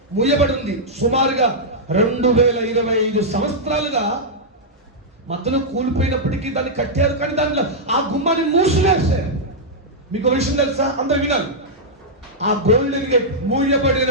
మూయబడి ఉంది. సుమారుగా 2025 సంవత్సరాలుగా మధ్యలో కూలిపోయినప్పటికీ దాన్ని కట్టారు, కానీ దాంట్లో ఆ గుమ్మాన్ని మూసివేశారు. మీకు విషయం తెలుసా? అందరూ వినాలి. ఆ గోల్డెన్ గేట్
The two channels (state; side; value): normal; both; correlation -0.08